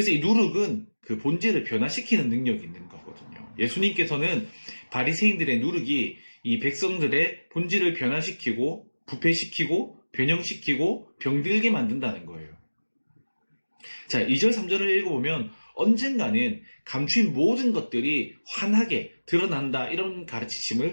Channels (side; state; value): both; inverted; correlation -1.00